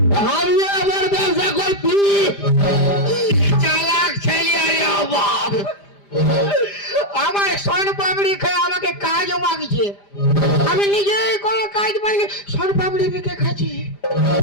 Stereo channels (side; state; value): right; late; 5.0 ms